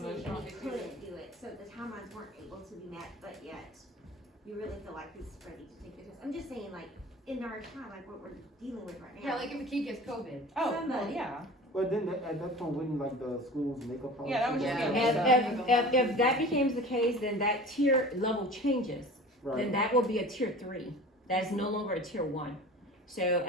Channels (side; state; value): both; normal; correlation 0.39